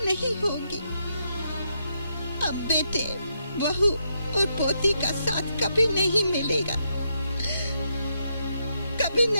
नहीं होगी। अब बेटे, बहू और पोती का साथ कभी नहीं मिलेगा, कभी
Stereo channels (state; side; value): inverted; both; correlation -0.79